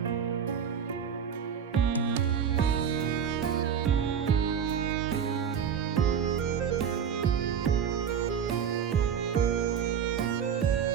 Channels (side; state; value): left; quieter; 7.8 dB